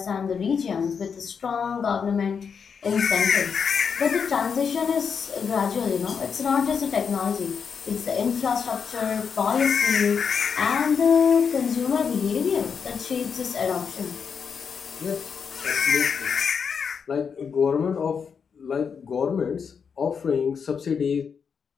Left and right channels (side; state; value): right; quieter; 6.4 dB